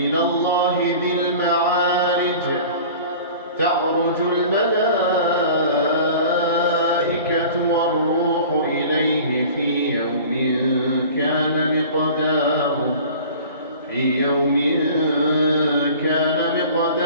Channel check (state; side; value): inverted; both; correlation -0.42